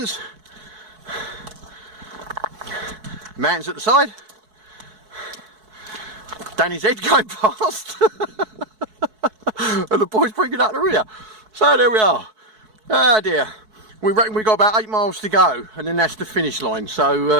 Mountains at the side. Danny's head going past. And the boys bringing up the rear. So there we are. Ah dear. We reckon we've got about 8 miles to go, and then that's the finish line.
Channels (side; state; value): left; late; 4.6 ms